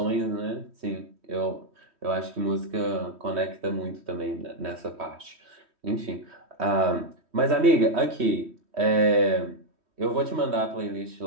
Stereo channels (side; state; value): left; late; 3.1 ms